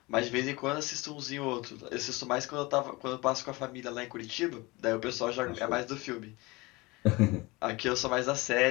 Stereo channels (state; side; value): quieter; right; 23.4 dB